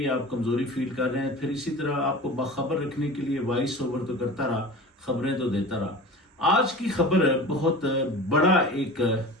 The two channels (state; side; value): normal; both; correlation 0.35